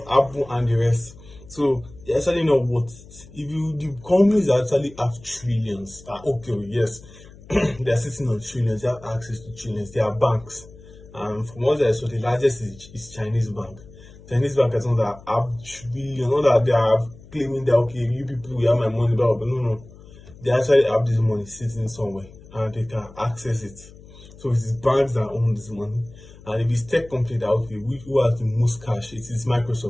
Apple, and the rest. So they're actually not worth it. If the companies actually have trillions, okay, yes, they are sitting on trillions, they have access to trillions, they are banks. And from what I saw, the largest is Chinese bank. Chinese bank is not that have trillion, not that they are claiming that okay, you people we have my money, but no. They actually have this money sitting somewhere and they can access it. So it is banks that own this money. And if it's tech company that okay, who has the most cash, it is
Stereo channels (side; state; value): left; noise; hum, 21 dB below the sound